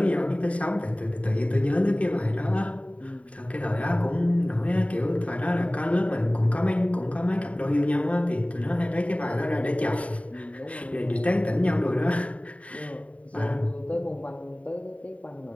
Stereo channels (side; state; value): right; late; 0.066 ms